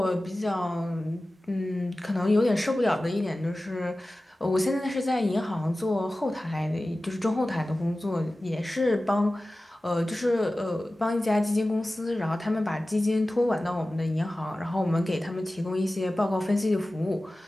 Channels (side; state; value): both; normal; correlation 0.96